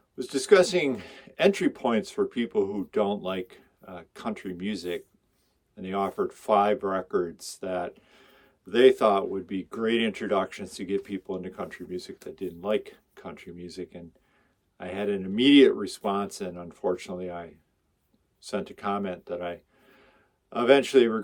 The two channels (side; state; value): both; identical; correlation 1.00